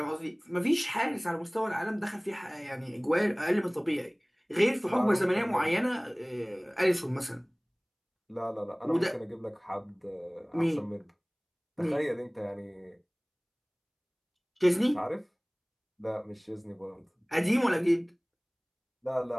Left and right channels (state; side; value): identical; both; correlation 1.00